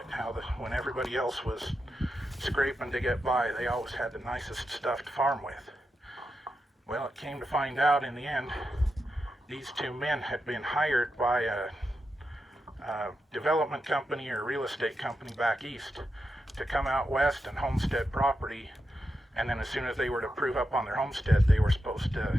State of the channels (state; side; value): normal; both; correlation 0.87